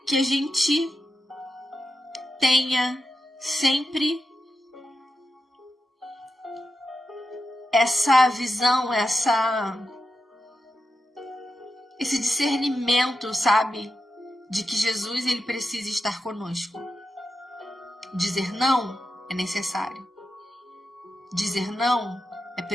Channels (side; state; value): both; normal; correlation 0.89